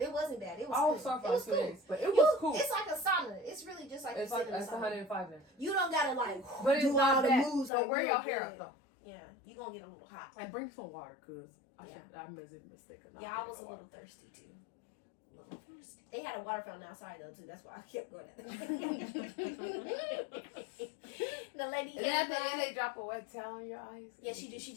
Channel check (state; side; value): drops out; right; at 7.7 s